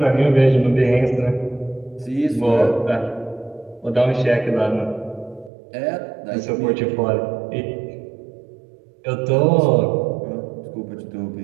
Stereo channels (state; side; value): drops out; left; at 5.5 s